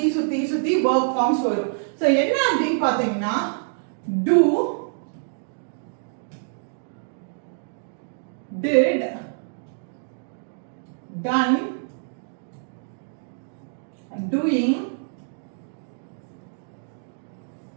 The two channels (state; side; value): silent; left; digital silence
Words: verb forms வரும். சோ என்ன அப்படினு பாத்தீங்கன்னா do, did, done, doing,